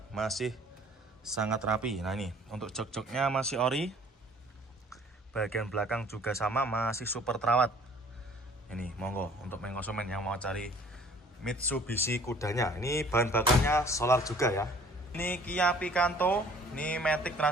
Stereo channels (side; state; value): both; normal; correlation 0.53